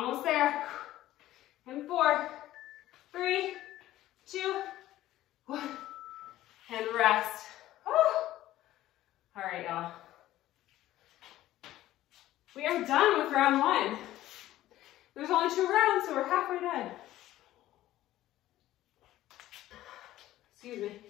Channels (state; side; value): quieter; right; 14.6 dB